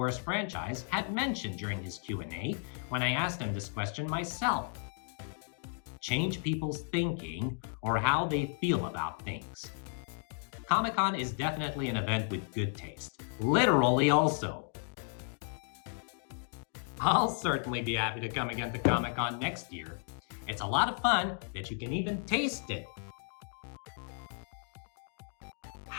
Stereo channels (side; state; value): right; silent; 55 dB below the other